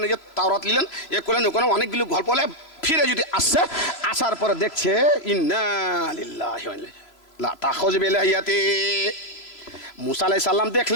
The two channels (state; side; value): late; right; 3.0 ms